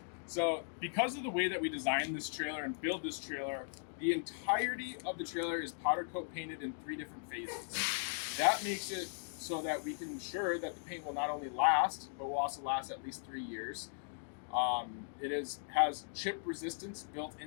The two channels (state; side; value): silent; right; digital silence